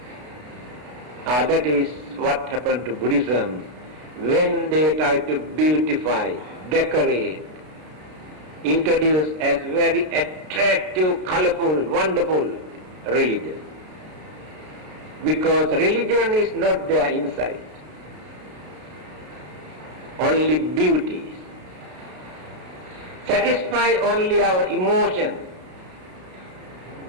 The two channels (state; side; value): late; left; 33 ms